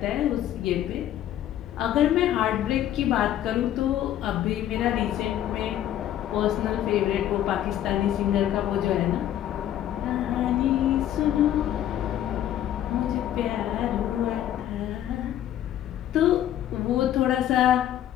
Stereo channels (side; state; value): right; quieter; 11.7 dB